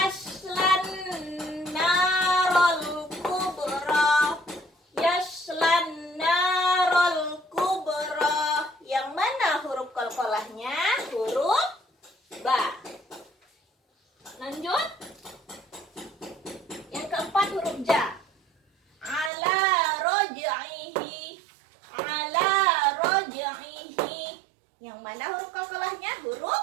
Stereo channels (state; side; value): drops out; left; at 19.3 s